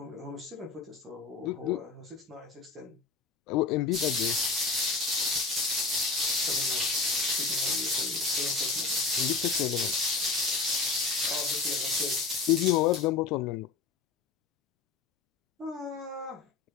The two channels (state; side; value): quieter; right; 4.5 dB